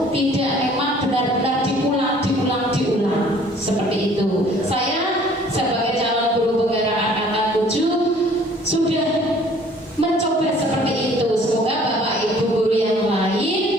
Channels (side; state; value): both; normal; correlation 0.55